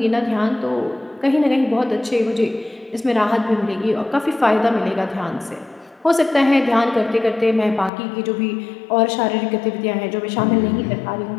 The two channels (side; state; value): right; drops out; at 7.9 s